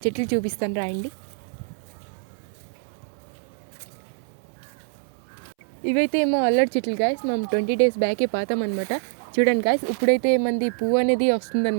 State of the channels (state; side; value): silent; left; 62 dB below the other